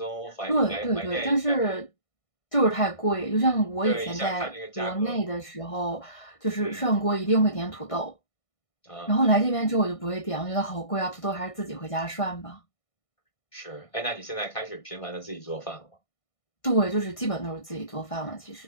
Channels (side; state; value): right; late; 1.6 ms